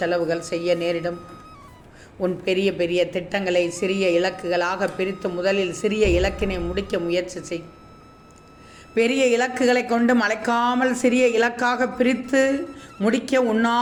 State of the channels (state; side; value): identical; both; correlation 1.00